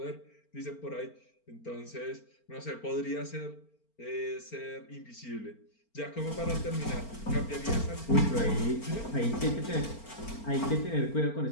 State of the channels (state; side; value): late; right; 4.4 ms